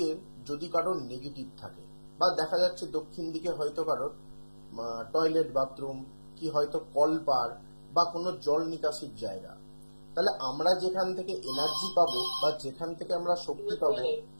যদি কারোর নেগেটিভ থাকে বা দেখা যাচ্ছে দক্ষিণ দিকে হয়তো কারোর টয়লেট বাথরুম কি হয়তো কলপার বা কোনো জল নিকাশির জায়গা, তাহলে আমরা যেখান থেকে এনার্জি পাবো বা যেখান থেকে আমরা শক্তি পাবো,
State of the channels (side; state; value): both; inverted; correlation -1.00